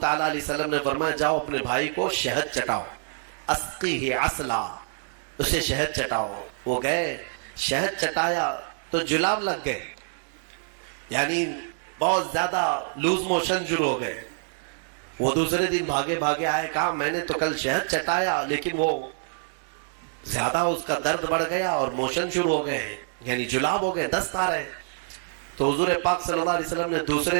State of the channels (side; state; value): left; silent; 61 dB below the other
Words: علیہ وسلم نے فرمایا جاؤ اپنے بھائی کو شہد چٹاؤ، اسقیہ عسلا، اسے شہد چٹاؤ۔ وہ گئے، شہد چٹایا تو جلاب لگ گئے، یعنی بہت زیادہ لوز موشن شروع ہو گئے۔ وہ دوسرے دن بھاگے بھاگے آئے، کہا میں نے تو کل شہد چٹایا لیکن وہ زیادہ اس کا درد بڑھ گیا اور موشن شروع ہو گئے، یعنی جلاب ہو گئے، دست آ رہے۔ تو حضور پاک صلی اللہ علیہ وسلم نے